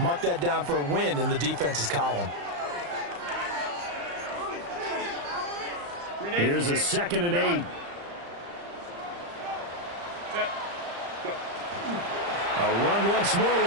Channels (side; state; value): left; late; 35 ms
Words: that down for a win in the defense's column. Here's a 2nd and 8. A run once more